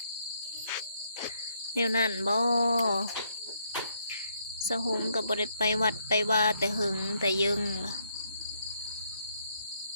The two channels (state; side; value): inverted; both; correlation -0.73